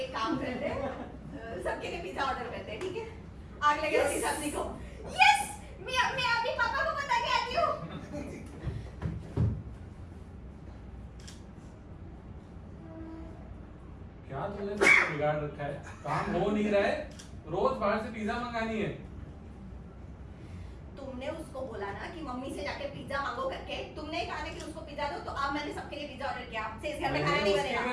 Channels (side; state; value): both; identical; correlation 1.00